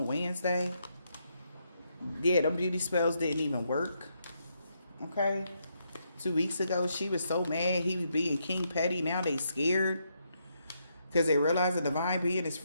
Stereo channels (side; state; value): both; inverted; correlation -0.78